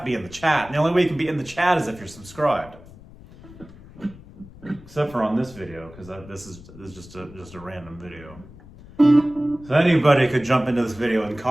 be in the chat. And the only way you can be in the chat is if you're subscribed. Except for on this video, because this is just a random video. So anybody could jump into this video and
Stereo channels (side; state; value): left; noise; rumble, 20 dB below the sound